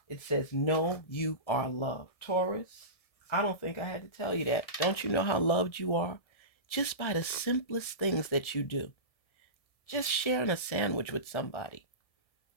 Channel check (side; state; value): right; late; 1.7 ms